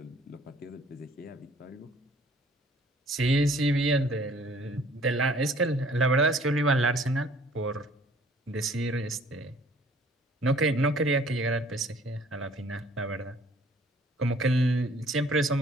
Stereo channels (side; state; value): both; normal; correlation 0.56